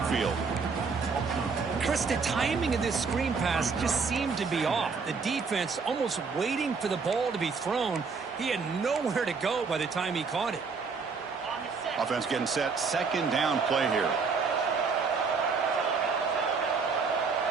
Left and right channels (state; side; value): quieter; left; 5.0 dB